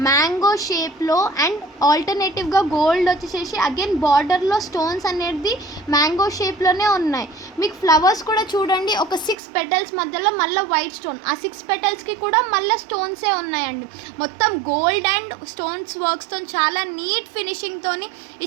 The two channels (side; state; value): left; drops out; at 9.3 s